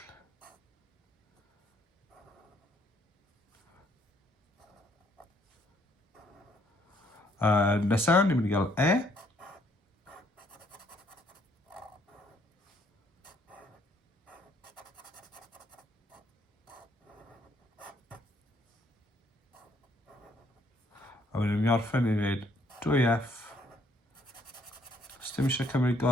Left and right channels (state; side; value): normal; both; correlation 0.67